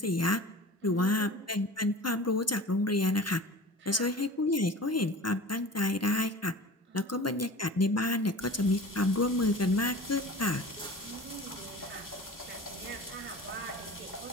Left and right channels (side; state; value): both; normal; correlation 0.38